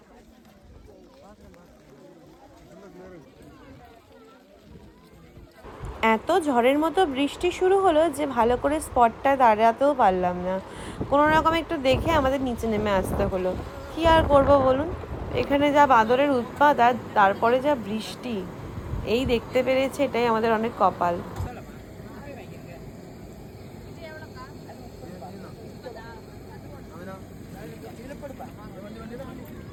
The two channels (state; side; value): identical; both; correlation 1.00